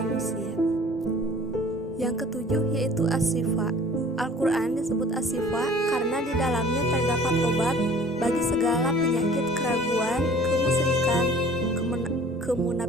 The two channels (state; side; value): normal; both; correlation 0.49